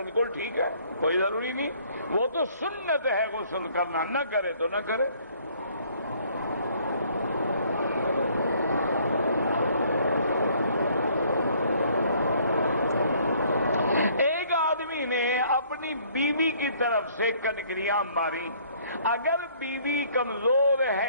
ٹھیک ہے، کوئی ضروری نہیں، وہ تو سنت ہے غسل کرنا، نہ کرے تو نہ کرے۔ ایک آدمی نے اپنی بیوی کی طرف سے کنکریاں ماری، اگر بیوی کمزور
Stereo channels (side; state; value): both; inverted; correlation -0.60